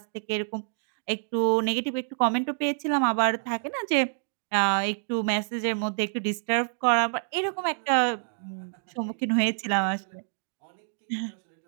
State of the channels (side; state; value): left; silent; 60 dB below the other